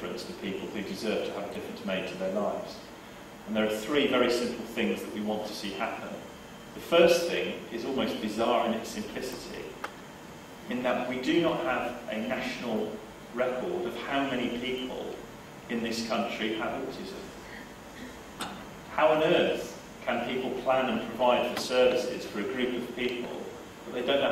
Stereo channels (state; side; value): identical; both; correlation 1.00